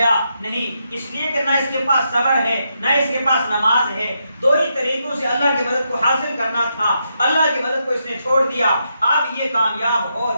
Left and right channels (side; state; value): both; inverted; correlation -0.82